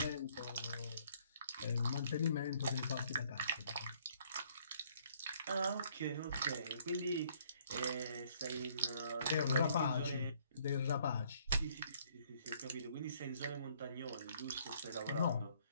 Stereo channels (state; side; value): inverted; both; correlation -0.63